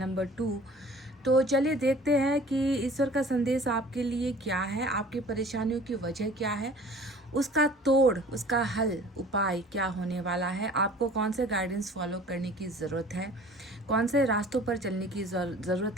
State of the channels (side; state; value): both; normal; correlation 0.47